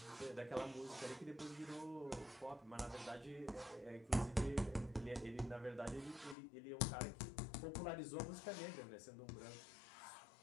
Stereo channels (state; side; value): drops out; right; at 6.4 s